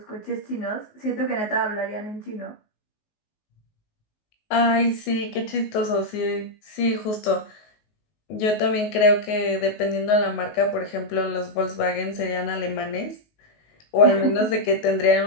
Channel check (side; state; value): right; late; 19 ms